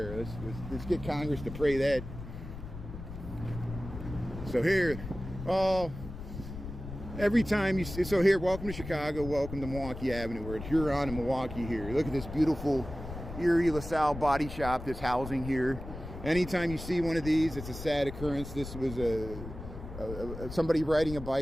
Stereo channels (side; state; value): left; noise; rumble, 10 dB below the sound